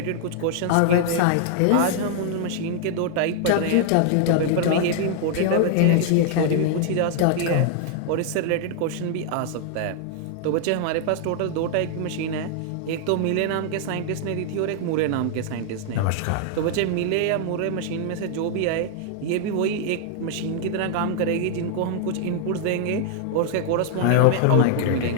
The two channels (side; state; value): both; different; correlation 0.00